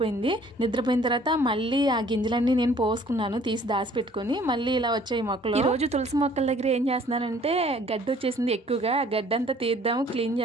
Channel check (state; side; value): normal; both; correlation 0.56